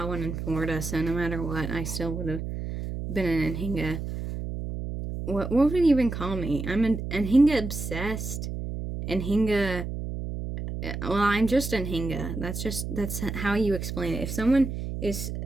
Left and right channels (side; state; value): right; noise; hum, 5 dB below the sound